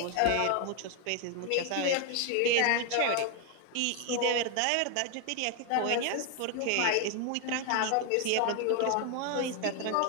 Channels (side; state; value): both; different; correlation 0.01